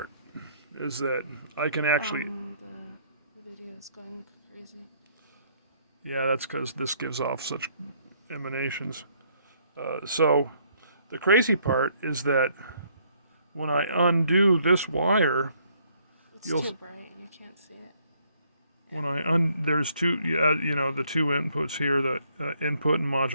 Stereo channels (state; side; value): inverted; both; correlation -0.67